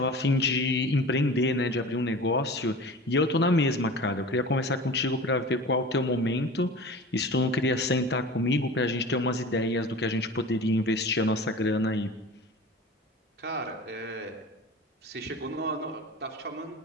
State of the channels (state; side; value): normal; both; correlation 0.36